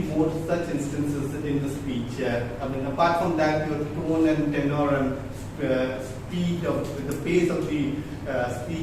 more such instances in the speech. Apart from that, your tone and tenor and speed with the pace of the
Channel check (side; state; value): both; identical; correlation 1.00